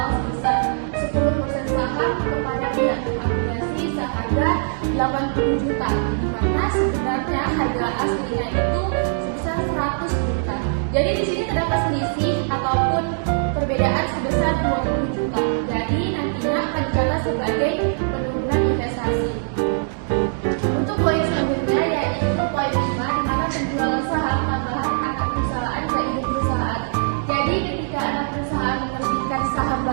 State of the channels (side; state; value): left; silent; digital silence